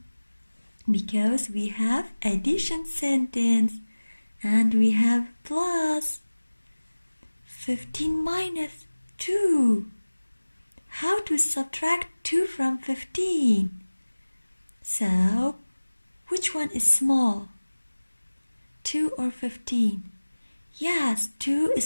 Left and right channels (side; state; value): both; inverted; correlation -1.00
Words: Because we have addition sentence and we have plus. 15 minus 2. How to subtract 2 from 15? So, which one is small? 2 or 15? Yes, 2